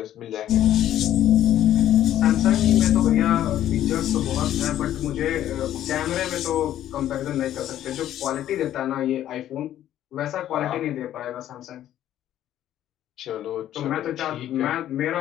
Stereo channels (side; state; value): right; quieter; 12.0 dB